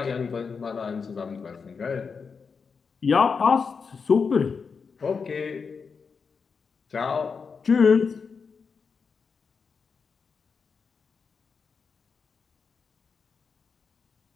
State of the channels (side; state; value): right; quieter; 5.5 dB